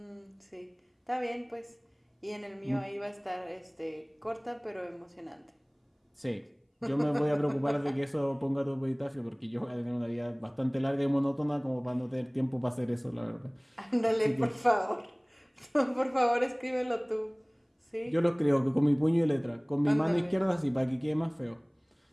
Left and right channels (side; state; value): both; identical; correlation 1.00